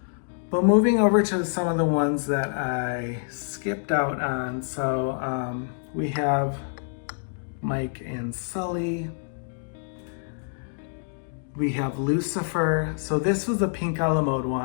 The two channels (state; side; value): silent; right; digital silence